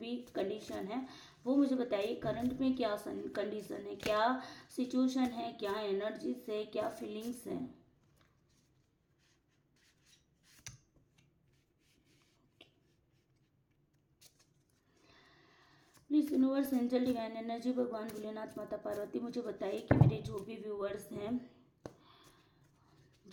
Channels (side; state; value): both; identical; correlation 1.00